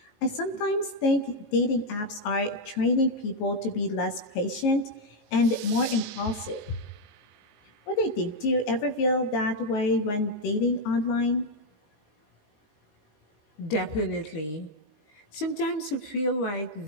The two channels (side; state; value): right; late; 19 ms